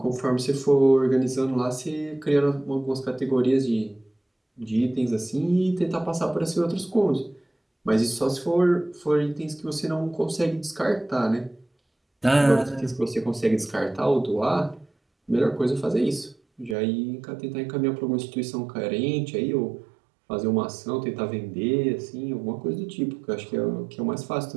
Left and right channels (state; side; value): drops out; left; at 16.8 s